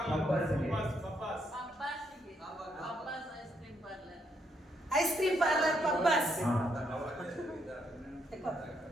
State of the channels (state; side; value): normal; both; correlation 0.75